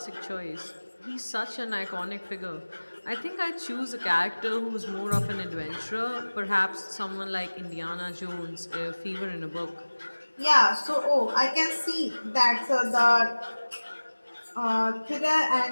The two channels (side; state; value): both; inverted; correlation -1.00